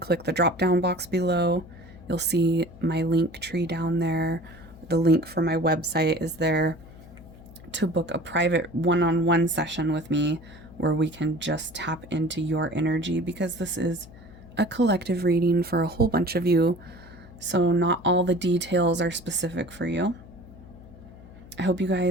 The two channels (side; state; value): left; noise; hum, 19 dB below the sound